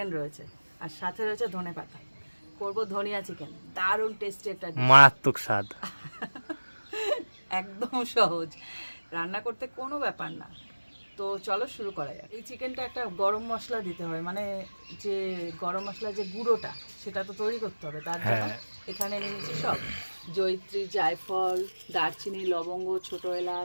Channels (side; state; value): both; inverted; correlation -1.00